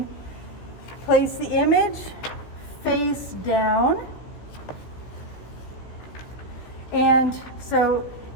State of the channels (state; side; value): late; right; 16 ms